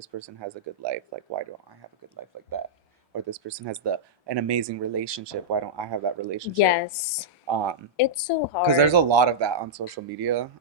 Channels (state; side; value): normal; both; correlation -0.09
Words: person has a good life. Like, why don't I have a good life like that? Or this person has an amazing relationship. Why don't I have that relationship? Yes. Um, It's so because there's hard. a lot of that on social media,